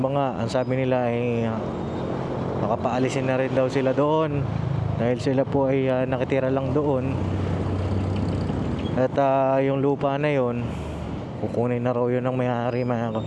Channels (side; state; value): both; identical; correlation 1.00